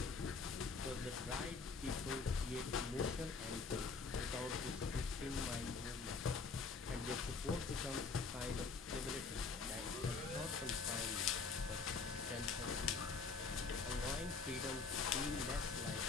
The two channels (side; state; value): right; quieter; 4.7 dB